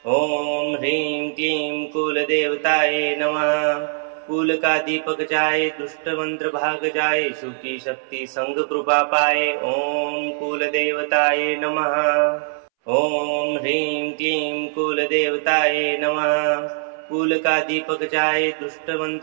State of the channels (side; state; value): left; silent; 65 dB below the other